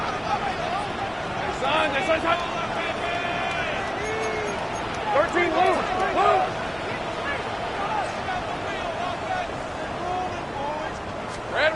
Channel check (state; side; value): identical; both; correlation 1.00